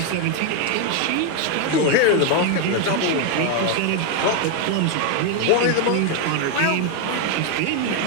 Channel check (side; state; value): both; different; correlation 0.01